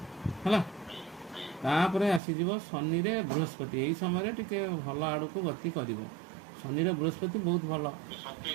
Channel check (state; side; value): drops out; left; at 2.2 s